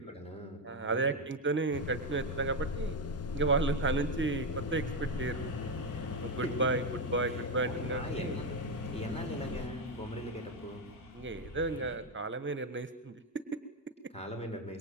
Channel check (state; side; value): normal; both; correlation 0.08